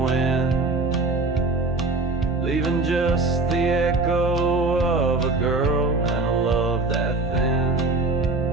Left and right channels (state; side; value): quieter; left; 3.4 dB